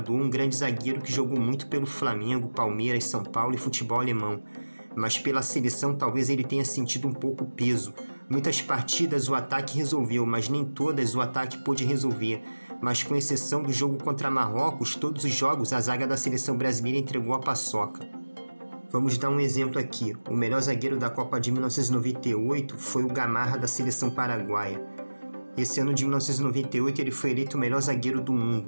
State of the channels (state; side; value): inverted; both; correlation -1.00